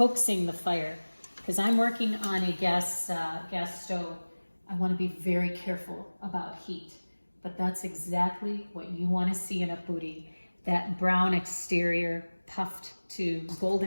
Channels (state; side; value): inverted; both; correlation -1.00